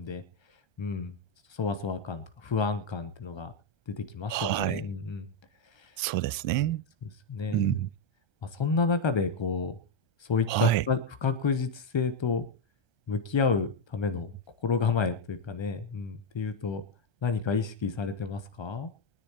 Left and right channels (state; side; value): late; right; 1.3 ms